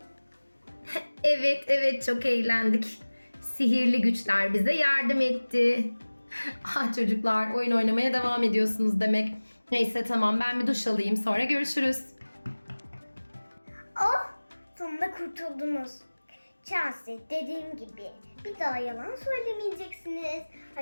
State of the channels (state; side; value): inverted; both; correlation -1.00